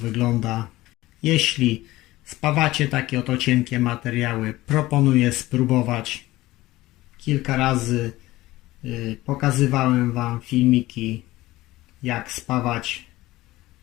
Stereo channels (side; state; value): right; quieter; 17.7 dB